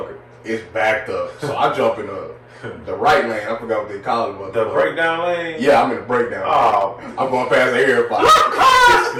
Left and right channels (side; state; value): both; identical; correlation 1.00